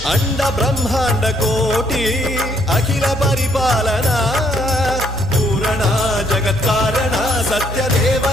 अंड ब्रह्मांड कोटि अखिल परिपालना पूरणा जगत्कारणा सत्य देव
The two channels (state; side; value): normal; both; correlation 0.68